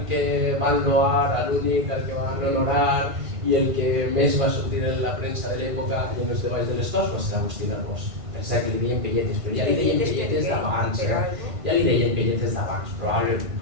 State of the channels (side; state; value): left; late; 1.5 ms